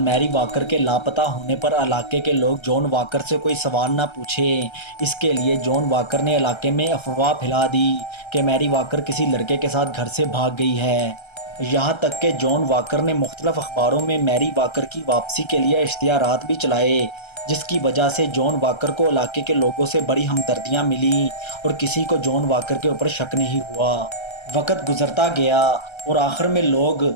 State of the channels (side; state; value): right; late; 1.3 ms